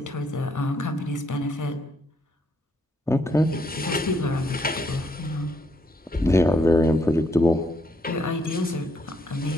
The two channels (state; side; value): normal; both; correlation 0.74